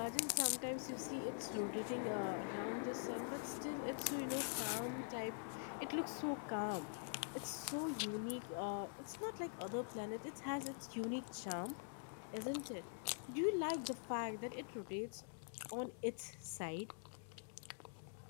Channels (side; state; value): right; silent; digital silence